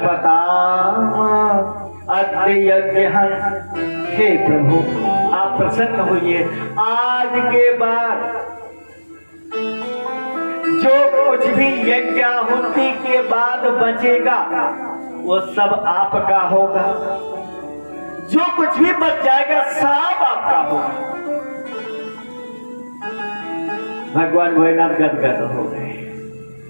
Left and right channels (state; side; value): inverted; both; correlation -1.00